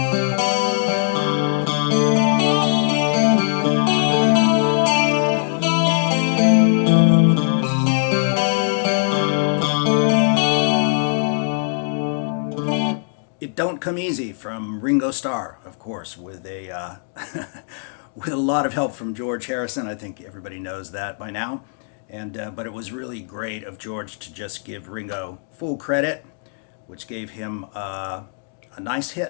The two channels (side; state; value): right; silent; digital silence